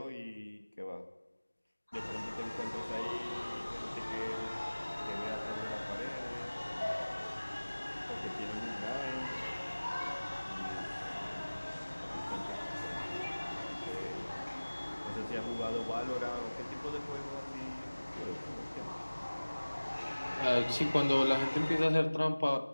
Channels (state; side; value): inverted; both; correlation -1.00